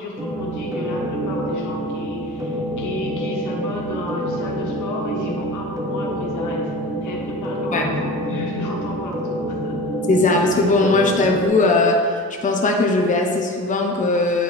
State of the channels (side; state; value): both; normal; correlation 0.35